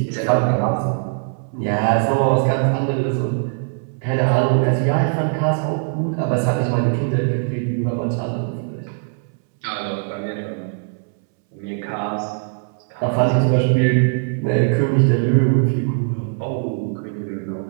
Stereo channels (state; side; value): silent; left; 65 dB below the other